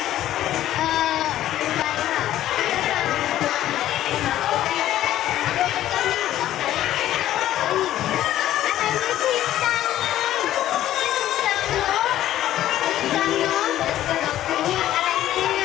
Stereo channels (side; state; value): right; quieter; 13.0 dB